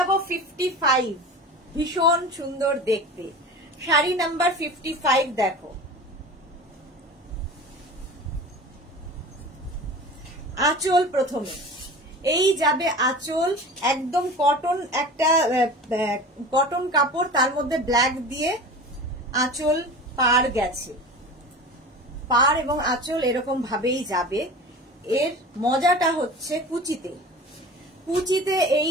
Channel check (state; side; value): normal; both; correlation 0.36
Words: 55, ভীষণ সুন্দর দেখতে শাড়ি নাম্বার 55। দেখো আঁচল প্রথমে, এই যাবে আঁচল, একদম কটন, একটা কটন কাপড়, তার মধ্যে ব্ল্যাক দিয়ে আঁচল পার গেছে, পার এবং আঁচল এরকম ভাবেই যাবে। এর মজাটা হচ্ছে কুচিতে, কুচিতে